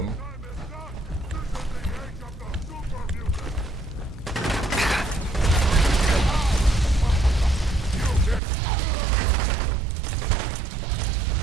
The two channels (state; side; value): drops out; left; at 8.4 s